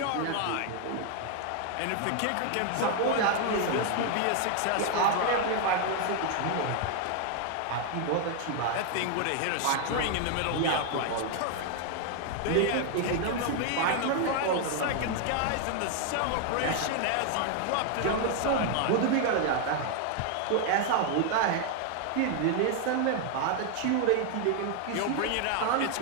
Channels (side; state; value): both; different; correlation 0.00